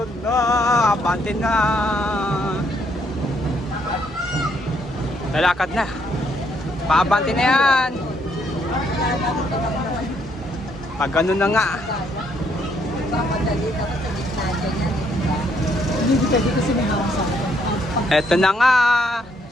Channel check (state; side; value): normal; both; correlation 0.71